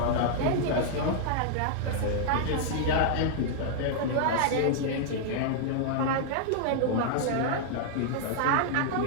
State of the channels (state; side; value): different; both; correlation -0.01